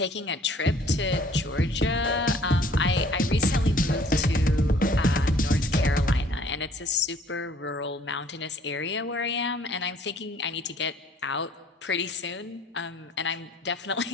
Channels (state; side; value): normal; both; correlation 0.57